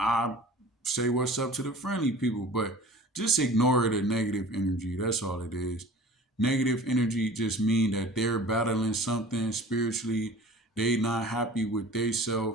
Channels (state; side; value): normal; both; correlation 0.43